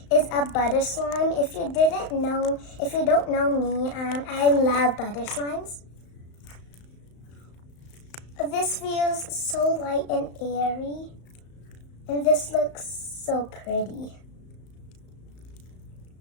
is a butter slime. If you don't know me, I love butter slimes. This feels so light and airy, and this looks so pretty.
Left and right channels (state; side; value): late; right; 35 ms